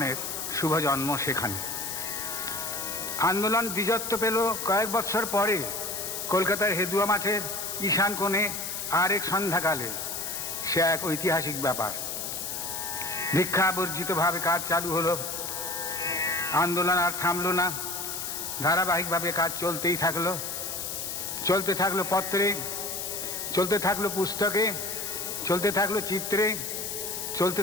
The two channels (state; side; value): noise; left; hiss, 4 dB below the sound